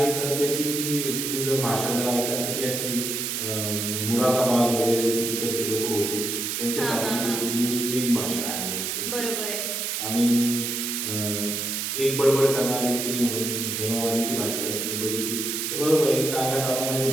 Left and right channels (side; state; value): right; noise; hiss, 2 dB below the sound